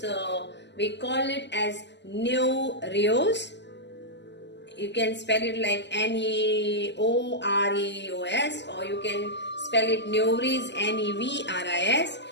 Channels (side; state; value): right; late; 0.51 ms